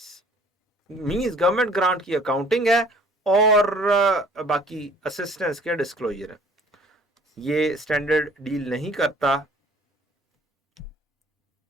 means government grant की accounting है और बाकी असिस्टेंस के disclosure है। ये स्टैंडर्ड डील नहीं करता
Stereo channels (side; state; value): both; normal; correlation 0.54